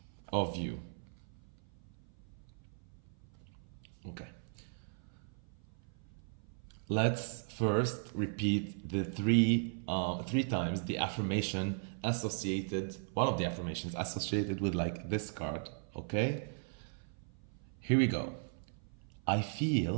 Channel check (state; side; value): silent; left; 53 dB below the other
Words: of you. Okay. Let's first repeat the three times the affirmation associated, one of the affirmations associated with like this card. Okay. Here we go. I